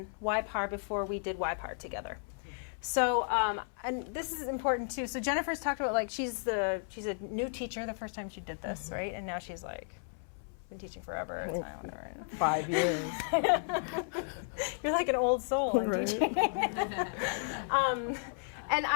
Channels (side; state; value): right; silent; 55 dB below the other